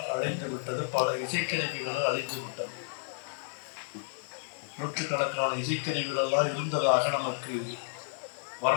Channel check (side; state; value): right; silent; 57 dB below the other